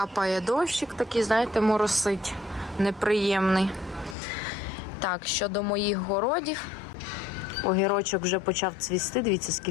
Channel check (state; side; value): drops out; right; at 4.2 s